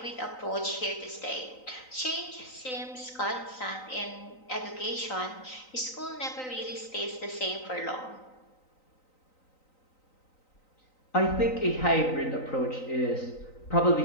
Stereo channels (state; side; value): late; right; 3.9 ms